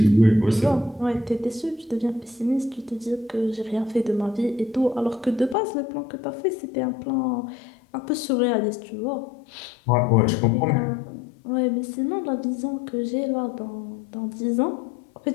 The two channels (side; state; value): right; drops out; at 5.6 s